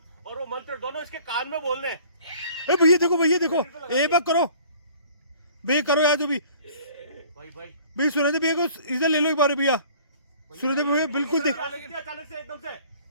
और वो मंत्र दोनों इसके कान में बोलने हैं। ए भैया देखो एक बार करो भैया, करो यार जो भी भाई भैया। सुरेंद्र भैया को इधर ले लो एक बार भैया। सुरेंद्र भैया बिल्कुल देख अचानक से एकदम से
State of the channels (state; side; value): inverted; both; correlation -0.51